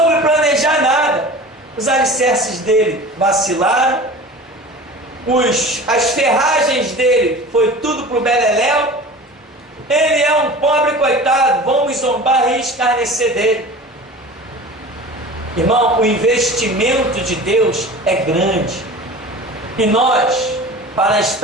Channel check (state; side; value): normal; both; correlation 0.38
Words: planejar nada. Os alicerces dele vacilaram, as ferragens dele foi tudo para o beleléu. Ele é um pobre coitado, vamos zombar e escarnecer dele. Irmão, o investimento de Deus é grande. E nós, para